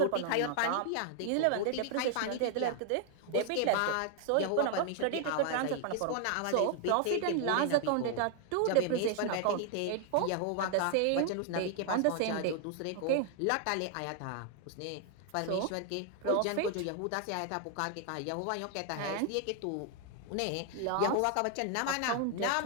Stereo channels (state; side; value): different; both; correlation 0.00